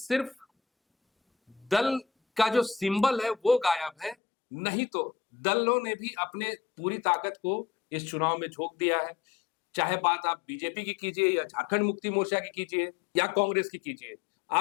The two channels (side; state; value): right; drops out; at 4.2 s